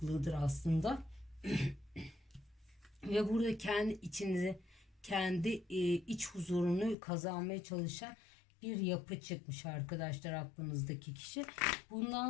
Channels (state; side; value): drops out; right; at 7.0 s